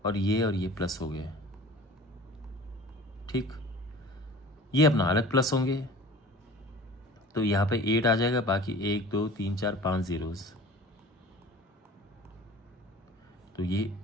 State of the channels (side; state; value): both; normal; correlation 0.42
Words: और ये प्लस हो गए, ठीक। ये अपना अलग प्लस होंगे, तो यहाँ पे 8 आ जाएगा, बाकी 1 2 3 4 5 zeros। तो ये